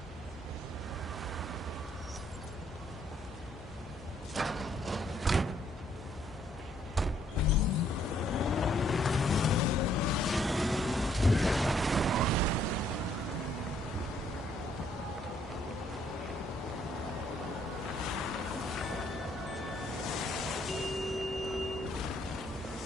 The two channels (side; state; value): both; normal; correlation 0.67